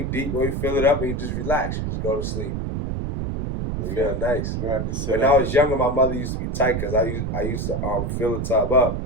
deep, boy. You fill it up and you just relax. You just go to sleep. You feel nice. You have to sit. When I was younger, my mother used to be tight because I used to fill the tub up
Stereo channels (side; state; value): right; noise; rumble, 2 dB below the sound